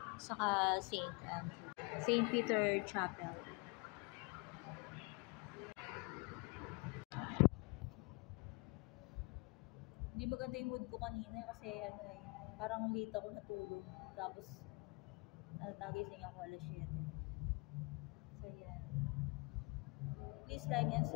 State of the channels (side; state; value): right; quieter; 29.2 dB